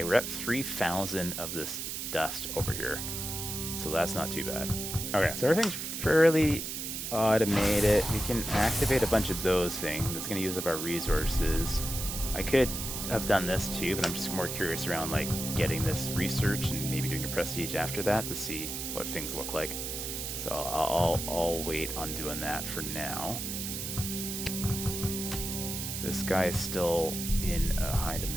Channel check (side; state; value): right; noise; hiss, 5 dB below the sound